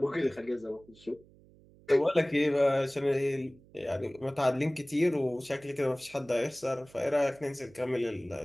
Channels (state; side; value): noise; right; hum, 26 dB below the sound